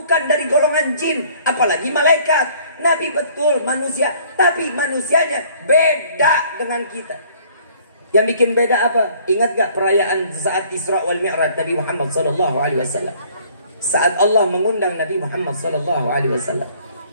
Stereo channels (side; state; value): both; inverted; correlation -0.57